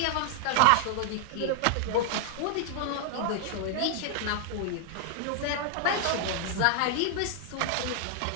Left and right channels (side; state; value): both; different; correlation 0.00